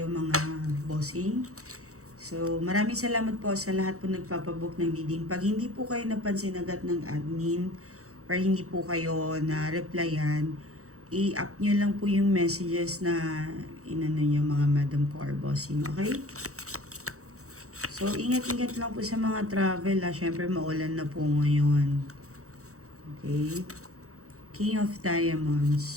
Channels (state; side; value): late; left; 0.65 ms